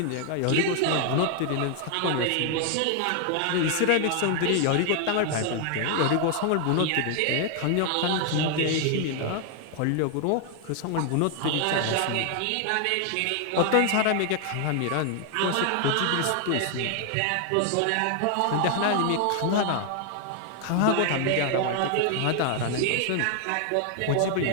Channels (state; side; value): different; both; correlation 0.00